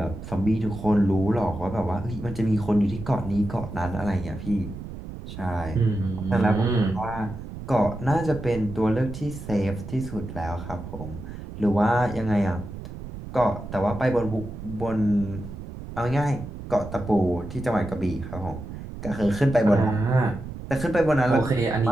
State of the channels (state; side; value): noise; right; rumble, 10 dB below the sound